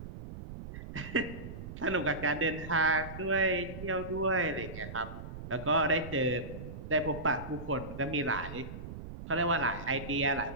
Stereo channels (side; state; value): right; noise; rumble, 10 dB below the sound